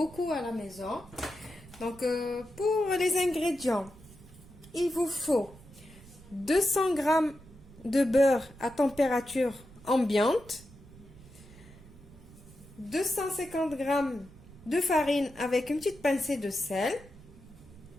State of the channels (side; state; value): right; noise; rumble, 21 dB below the sound